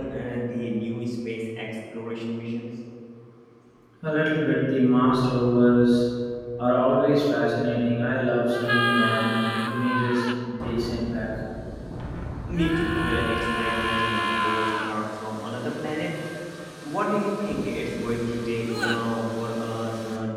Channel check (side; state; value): both; identical; correlation 1.00